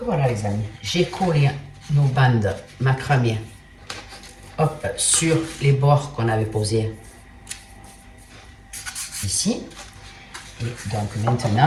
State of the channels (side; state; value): both; identical; correlation 1.00